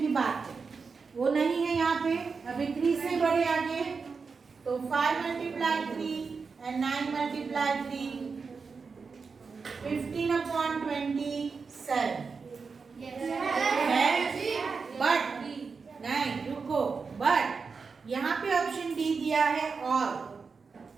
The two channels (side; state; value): left; quieter; 5.0 dB